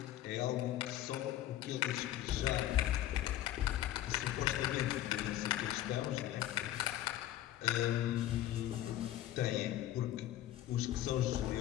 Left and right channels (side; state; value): right; quieter; 13.3 dB